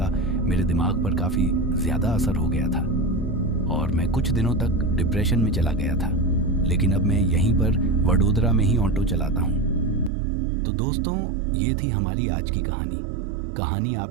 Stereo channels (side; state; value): left; drops out; at 10.1 s